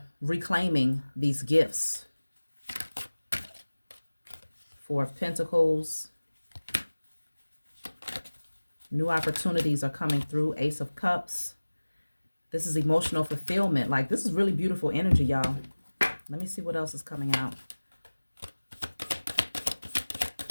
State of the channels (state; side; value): inverted; both; correlation -1.00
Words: reclaiming these gifts. 4 of Pentacles. New opportunities are coming through. Ace of Cups. This is emotional fulfillment. Like, this is really beautiful energy, y'all. Let me see what else is coming out.